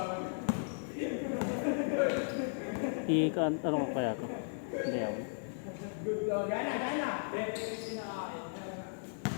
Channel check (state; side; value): silent; right; digital silence